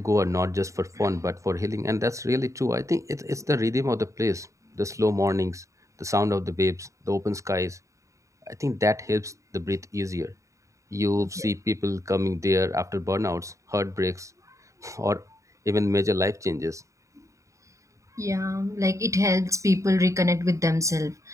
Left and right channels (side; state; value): left; late; 0.15 ms